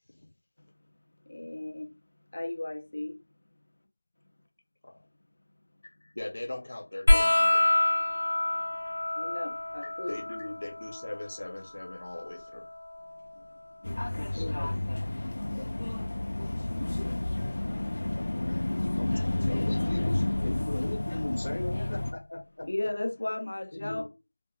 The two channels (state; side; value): inverted; both; correlation -1.00